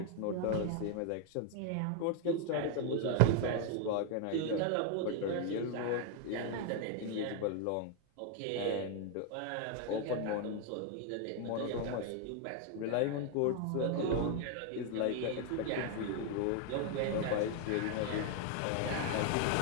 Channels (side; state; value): both; different; correlation 0.00